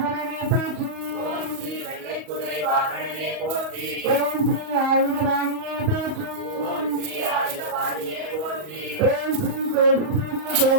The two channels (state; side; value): late; left; 38 ms